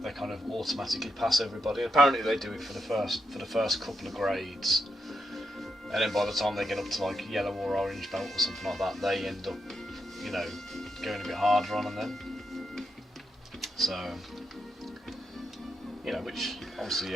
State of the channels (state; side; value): normal; both; correlation 0.83